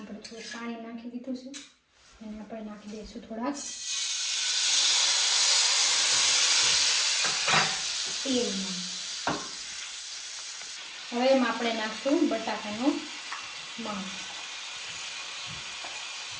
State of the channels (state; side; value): identical; both; correlation 1.00